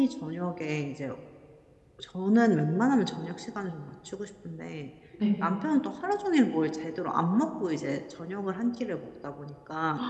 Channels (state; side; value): identical; both; correlation 1.00